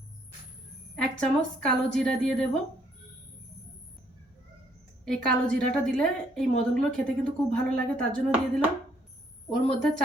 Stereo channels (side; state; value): both; normal; correlation 0.67